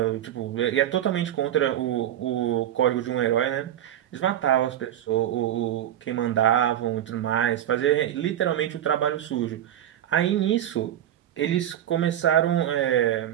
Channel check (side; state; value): left; quieter; 11.3 dB